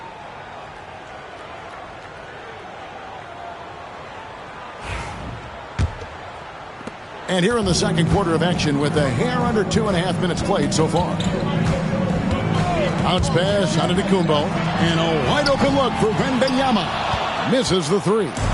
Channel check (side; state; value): both; identical; correlation 1.00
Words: And here in the second quarter of action with a hair under 2.5 minutes played so far. Bounce pass out of Antetokounmpo. And a wide open look for Wembanyama. Misses the 3.